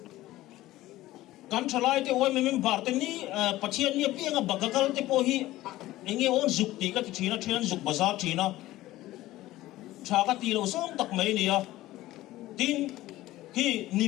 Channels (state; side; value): quieter; right; 16.3 dB